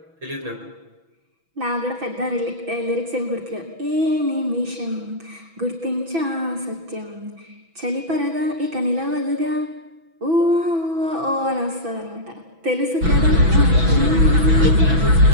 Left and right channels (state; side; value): late; left; 6.1 ms